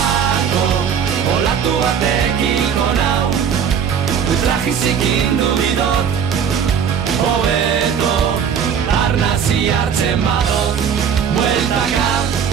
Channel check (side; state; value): left; quieter; 7.6 dB